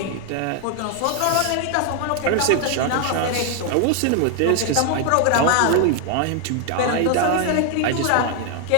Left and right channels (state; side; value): different; both; correlation 0.00